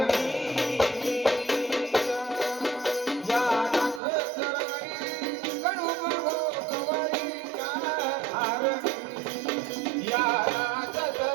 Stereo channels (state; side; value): drops out; left; at 4.0 s